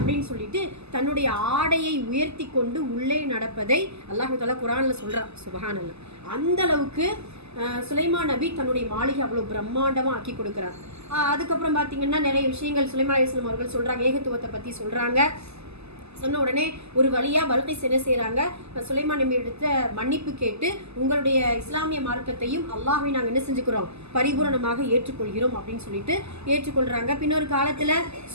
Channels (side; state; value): left; late; 0.79 ms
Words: சொல்லிட்டு தன்னுடைய ஆடையை உயர்த்தி கொண்டு உள்ளே நடப்பதை அல்லாஹ் தஆலா குர்ஆன்ல சொல்றான். சுப்ஹானல்லாஹ். அந்த அளவுக்கு சுலைமான் நபி தன்னுடைய மாளிகை அவ்வளவு பிரம்மாண்டமா ஆக்கி கொடுக்குறார். அதுக்கப்புறம் பார்த்தீங்கன்னா நிறைய விஷயங்கள் சுலைமான் அலைஹிஸ்ஸலாம் அவர்கள் சொல்றாங்க, ஏகத்துவத்தை பத்தி சொல்றாங்க. சொன்ன உடனே ஒரு வழியா பல்கீஸ் என்ன செய்யறாங்க? சுலைமான் நபி எடுத்த மன்னிப்பு கேட்டு, உங்களுடைய இஸ்லாமிய மார்க்கத்தையும் அல்லாஹ்வை நாங்கள் என்ன செஞ்சுக்கிறோம்? பரிபூரணமாக ஏற்றுக்கொள்கிறோம் அப்படின்னு சொல்லிட்டு ஏற்றுக்கொள்றாங்க. பின்னொரு காலத்துல